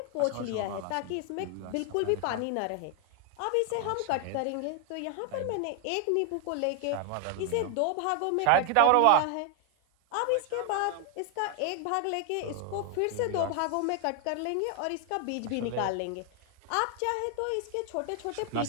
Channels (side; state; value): both; different; correlation 0.00